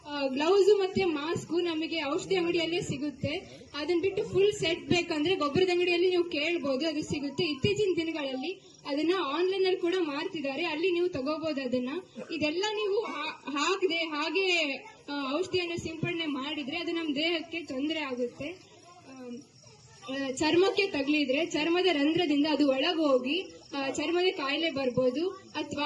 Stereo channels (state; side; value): identical; both; correlation 1.00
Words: ಗ್ಲೌಸ್ ಮತ್ತೆ ಮಾಸ್ಕ್ ನಮಗೆ ಔಷಧಿ ಅಂಗಡಿಯಲ್ಲೇ ಸಿಗುತ್ತೆ. ಅದನ್ನ ಬಿಟ್ಟು ಫುಲ್ ಸೆಟ್ ಬೇಕಂದ್ರೆ ಗೊಬ್ಬರದ ಅಂಗಡಿಯಲ್ಲಿ ನೀವು ಕೇಳಬಹುದು, ಅದು ಸಿಗುತ್ತೆ. ಇತ್ತೀಚಿನ ದಿನಗಳಲ್ಲಿ ಅದನ್ನ ಆನ್ಲೈನ್ ಅಲ್ಲಿ ಕೂಡ ಮಾರ್ತಿದ್ದಾರೆ, ಅಲ್ಲಿ ನೀವು ತಗೋಬಹುದು ಅದನ್ನ. ಇದೆಲ್ಲ ನೀವು ಹಾಕದೆ ಹಾಗೆ ಔಷಧಿಯನ್ನು ಸಿಂಪಡಣೆ ಮಾಡಿದ್ರೆ ಅದು ನಮ್ಮ ದೇಹಕ್ಕೆ ತೊಂದರೆ ಆಗುತ್ತೆ. ಚರ್ಮಕ್ಕೆ ತಗಲಿದ್ರೆ ಚರ್ಮದ ರಂಧ್ರದಿಂದ ಅದು ಒಳಗೋಗಿ ಚರ್ಮದ ಕಾಯಿಲೆ ಬರ್ಬೋದು,